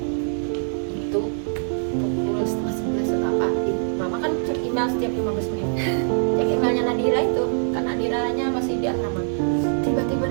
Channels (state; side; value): silent; left; 63 dB below the other